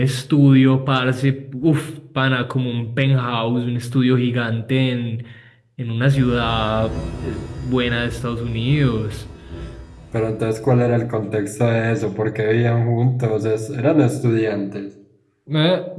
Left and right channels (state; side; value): identical; both; correlation 1.00